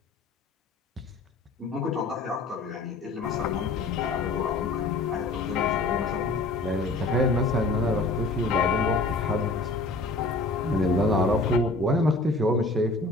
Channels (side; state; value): right; quieter; 3.1 dB